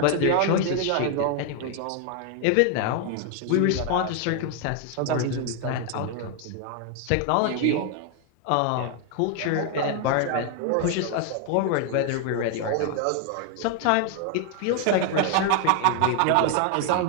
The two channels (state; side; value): different; both; correlation 0.00